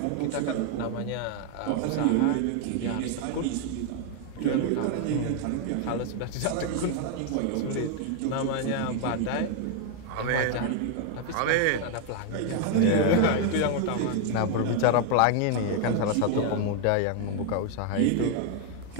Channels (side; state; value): both; different; correlation 0.01